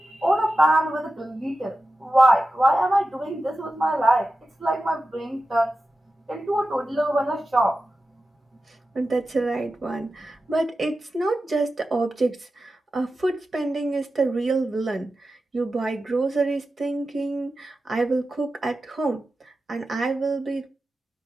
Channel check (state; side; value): normal; both; correlation 0.93